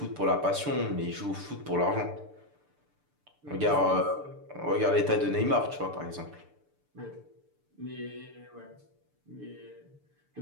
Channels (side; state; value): left; late; 6.8 ms